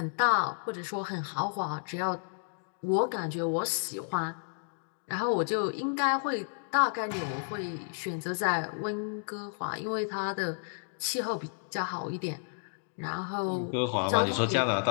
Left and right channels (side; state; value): right; silent; digital silence